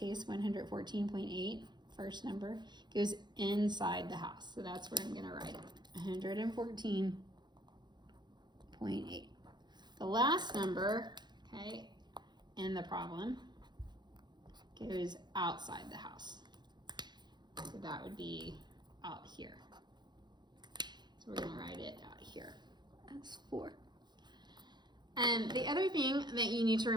114.8, first number, goes inside the house. So that's where I'm going to write it, 114.8. The last number, okay, in the problem goes outside the house. So that would be out here. So we're going to write it out here as 4. And the other thing that you need to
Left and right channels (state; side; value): late; left; 0.21 ms